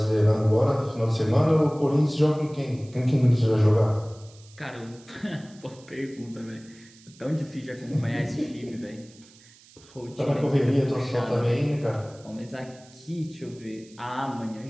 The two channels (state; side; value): noise; right; hiss, 25 dB below the sound